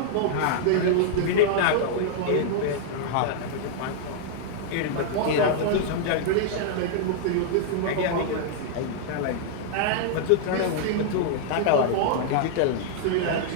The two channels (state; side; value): different; both; correlation -0.01